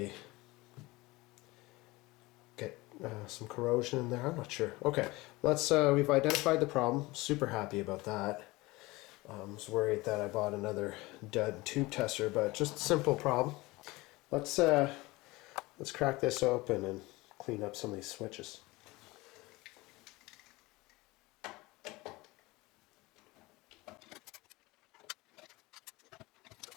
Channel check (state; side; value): quieter; right; 21.6 dB